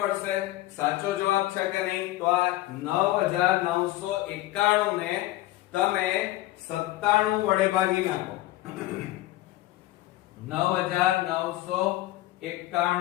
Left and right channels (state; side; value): quieter; right; 16.7 dB